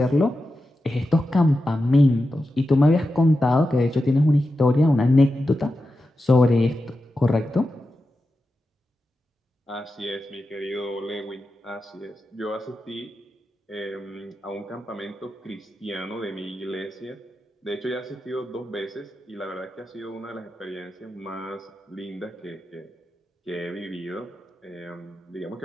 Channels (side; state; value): both; normal; correlation 0.90